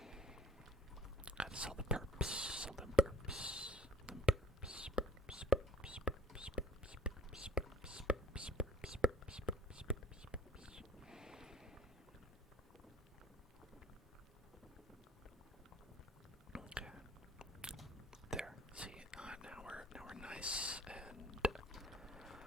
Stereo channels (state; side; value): normal; both; correlation 0.51